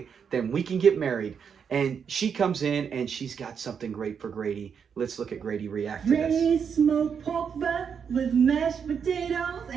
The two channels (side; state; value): left; quieter; 6.9 dB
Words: then we can get married. And she comes in, and she's got something great for Grady. Let's look at Grady react to this. Ready smoked pork butt with mashed potatoes